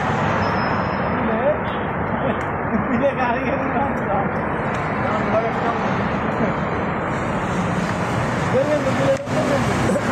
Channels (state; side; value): identical; both; correlation 1.00